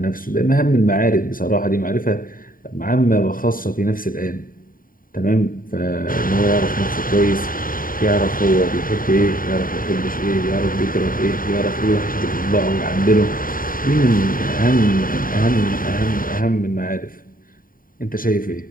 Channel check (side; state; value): right; late; 0.41 ms